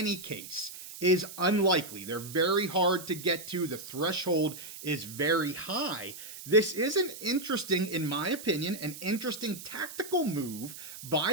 case is unlikely, they're very hard to get to, the threshold is very high, this is an interesting, in my opinion, an interesting tactical move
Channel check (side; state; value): right; noise; hiss, 13 dB below the sound